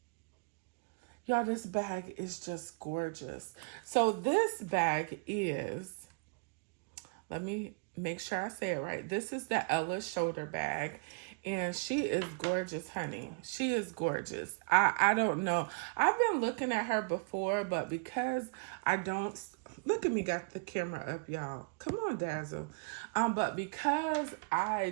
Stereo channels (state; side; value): quieter; left; 35.2 dB